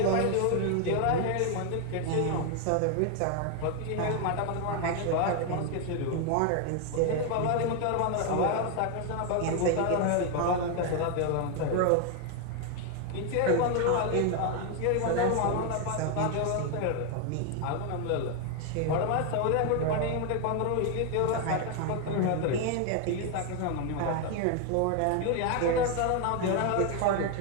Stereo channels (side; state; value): both; different; correlation 0.01